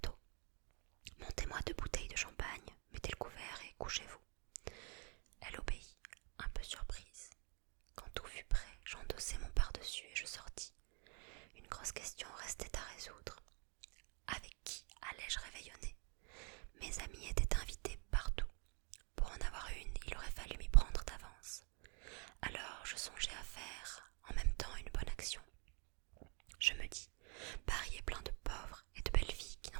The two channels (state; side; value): quieter; left; 36.7 dB